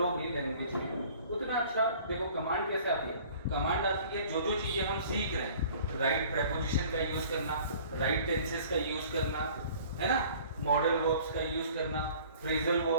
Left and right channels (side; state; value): both; inverted; correlation -0.50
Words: लैंग्वेज में, उतना अच्छा. देखो कमांड कैसे आती है? कमांड आती है जो चीजें हम सीख रहे हैं, राइट प्रेपोजिशन का यूज करना, राइट टेंसेस का यूज करना, है ना, मॉडल वर्ब्स का यूज करना, फ्रेजल